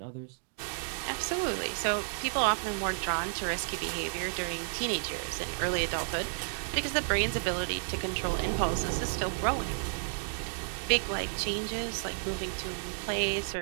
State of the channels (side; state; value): left; silent; digital silence